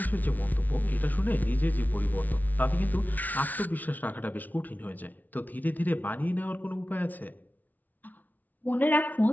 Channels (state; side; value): late; right; 0.078 ms